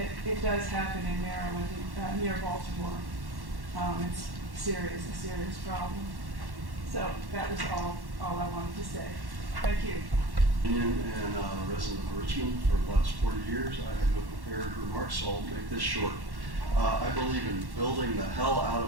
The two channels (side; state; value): left; late; 1.1 ms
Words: It does happen in Maryland, near Baltimore. It's a serious problem. So that was all I wanted to say. Thank you. And a resident of Richmond for the last 40 years. I have no prepared remarks, so I'll make this short. I believe in building the hell out